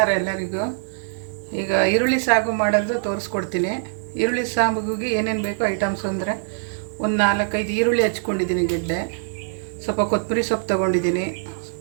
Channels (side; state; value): left; silent; digital silence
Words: ಎಲ್ಲರಿಗೂ. ಈಗ ಈರುಳ್ಳಿ ಸಾಗು ಮಾಡೋದು ತೋರಿಸ್ಕೊಡ್ತೀನಿ. ಈರುಳ್ಳಿ ಸಾಂಬಾರಿಗೆ ಏನೇನು ಬೇಕೋ ಐಟಮ್ಸ್ ಅಂದರೆ ಒಂದು 4-5 ಈರುಳ್ಳಿ ಹಚ್ಕೊಂಡಿದ್ದೀನಿ, ಗೆಡ್ಡೆ, ಸ್ವಲ್ಪ ಕೊತ್ತಂಬರಿ ಸೊಪ್ಪು ತೊಗೊಂಡಿದ್ದೀನಿ,